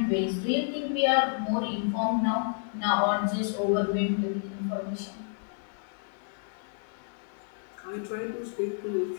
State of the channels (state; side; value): silent; right; 58 dB below the other